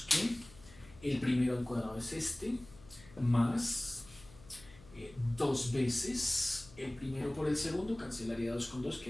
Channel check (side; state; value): left; noise; hum, 22 dB below the sound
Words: que el primero al cuadrado es este, más 2 veces el primero por el segundo, cancelaría 2 con 2,